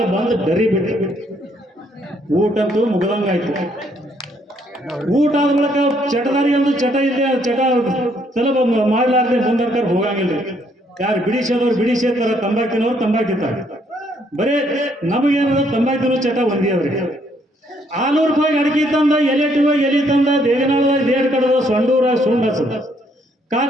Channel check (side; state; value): both; normal; correlation 0.69